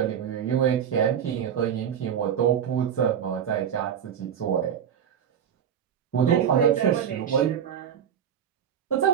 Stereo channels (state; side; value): quieter; left; 8.6 dB